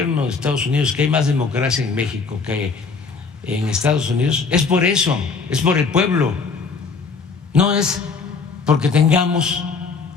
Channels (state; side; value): quieter; right; 4.8 dB